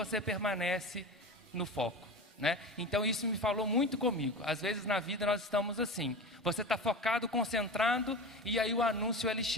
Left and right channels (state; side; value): normal; both; correlation 0.28